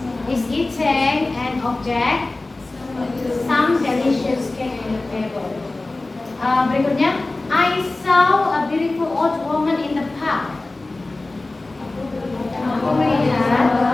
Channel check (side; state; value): right; quieter; 3.1 dB